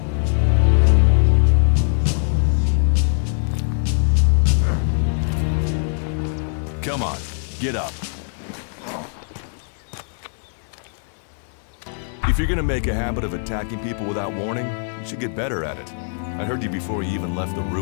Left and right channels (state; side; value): silent; right; digital silence